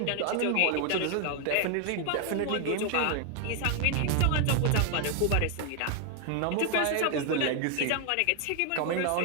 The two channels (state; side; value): different; both; correlation 0.00